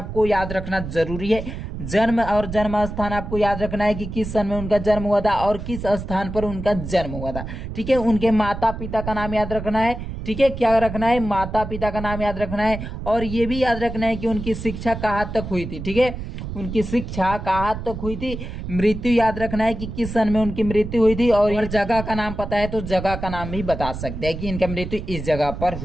याद रखना जरूरी है। जन्म और जन्म स्थान आपको याद रखना है कि किस सन में उनका जन्म हुआ था और किस स्थान पर उनका जन्म हुआ था। ठीक है, उनके माता पिता का नाम याद रखना है। ठीक है, क्या रखना है, माता पिता का नाम याद रखना है। और ये भी याद रखना है कि उनकी शिक्षा कहाँ तक हुई थी। ठीक है, उनकी शिक्षा कहाँ तक हुई थी। मृत्यु याद रखना है कि किस सन में उनकी मृत्यु हुई थी। और जगह का नाम पता है तो जगह का नाम भी बता सकते हैं कि इनका मृत्यु इस जगह पर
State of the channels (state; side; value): noise; right; rumble, 8 dB below the sound